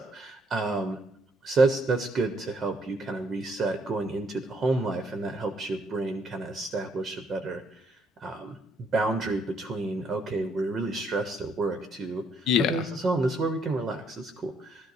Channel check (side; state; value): both; normal; correlation 0.70